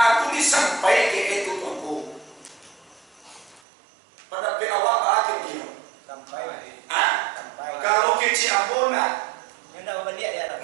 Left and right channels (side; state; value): left; drops out; at 3.6 s